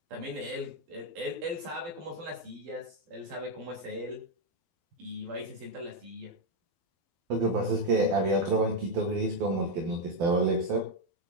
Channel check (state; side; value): late; left; 12 ms